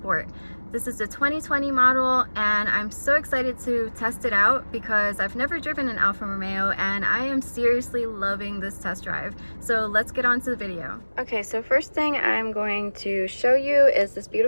This is the 2020 model and I'm so excited to test it out because I've never driven an Alfa Romeo and I am seriously loving this test drive. So let's get on to the video. Okay, so first thing I'm going to show you is this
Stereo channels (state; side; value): inverted; both; correlation -1.00